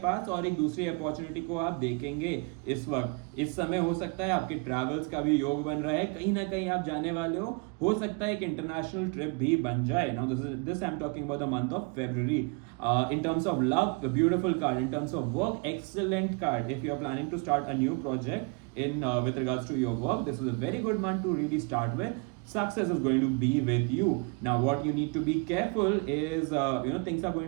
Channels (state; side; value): quieter; left; 31.7 dB